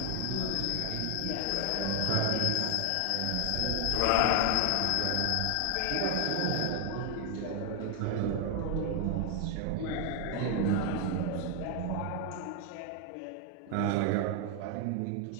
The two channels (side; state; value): both; different; correlation 0.00